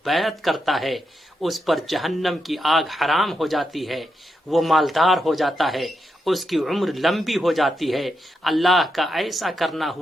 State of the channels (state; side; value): normal; both; correlation 0.84